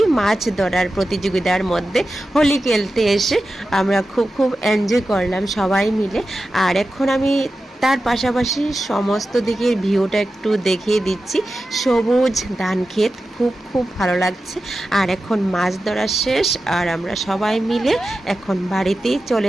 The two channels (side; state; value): both; normal; correlation 0.93